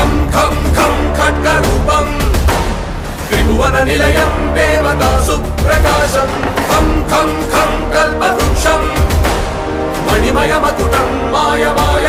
खं खं खड्गरूपं त्रिभुवननिलयं देवतासुप्रकाशं खं खं खं कल्पवृक्षं मणिमयमकुटं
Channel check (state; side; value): identical; both; correlation 1.00